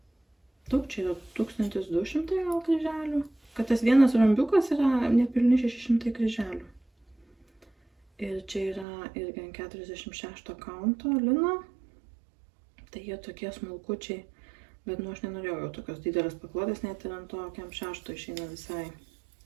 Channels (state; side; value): drops out; left; at 8.8 s